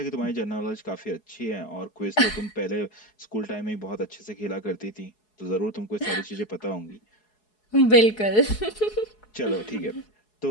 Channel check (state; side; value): late; right; 4.7 ms